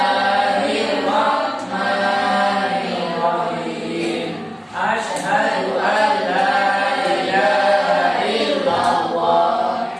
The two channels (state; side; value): identical; both; correlation 1.00